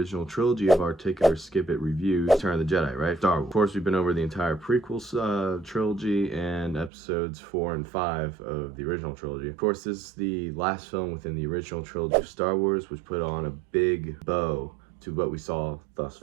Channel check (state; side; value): drops out; left; at 6.9 s